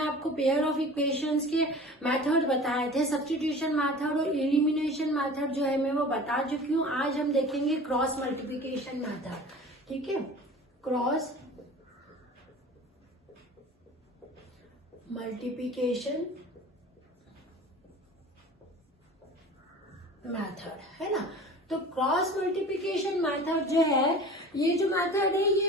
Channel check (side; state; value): both; normal; correlation 0.40